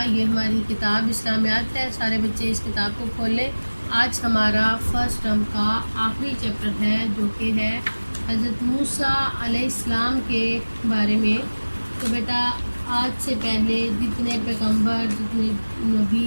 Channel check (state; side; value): inverted; both; correlation -1.00